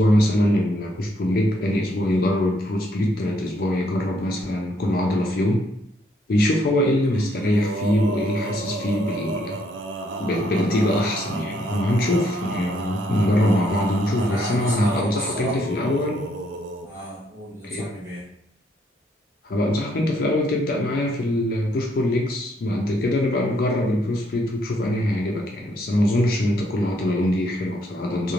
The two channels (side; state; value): both; normal; correlation 0.71